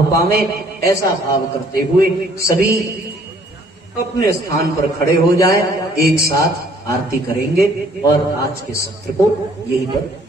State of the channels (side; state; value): both; normal; correlation 0.60